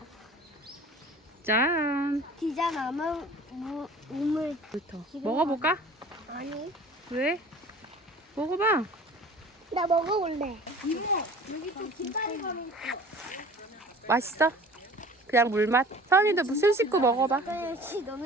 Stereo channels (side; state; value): both; normal; correlation 0.45